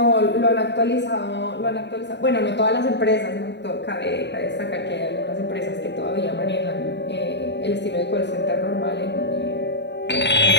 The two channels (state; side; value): late; right; 0.51 ms